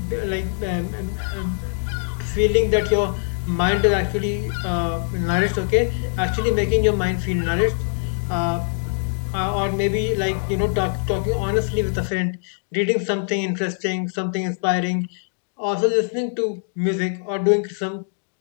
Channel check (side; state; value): right; silent; digital silence